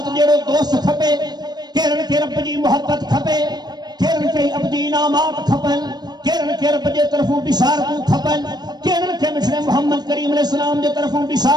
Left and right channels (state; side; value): late; left; 0.20 ms